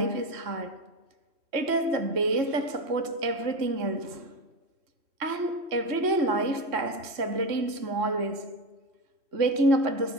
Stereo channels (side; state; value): left; late; 3.1 ms